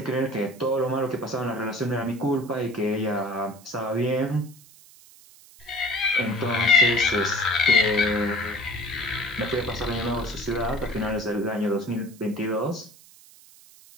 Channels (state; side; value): noise; right; hiss, 23 dB below the sound